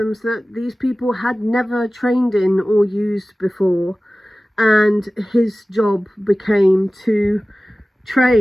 that these people had never trained in or used before, and his job became to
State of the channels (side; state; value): both; normal; correlation 0.97